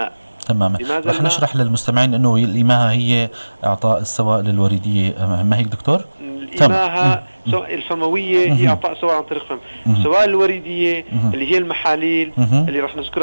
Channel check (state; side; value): inverted; both; correlation -1.00